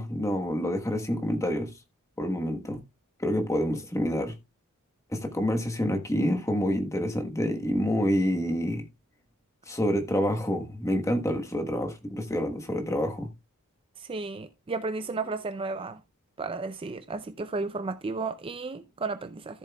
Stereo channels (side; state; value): both; normal; correlation 0.79